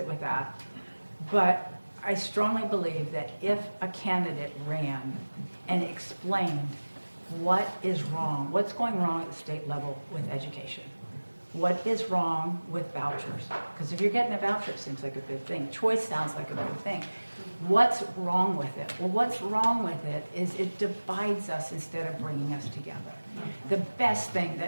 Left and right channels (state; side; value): inverted; both; correlation -1.00